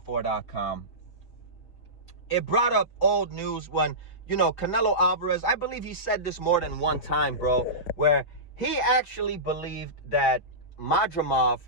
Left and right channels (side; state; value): right; late; 5.5 ms